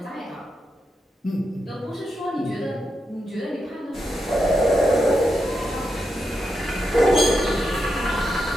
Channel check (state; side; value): normal; both; correlation 0.85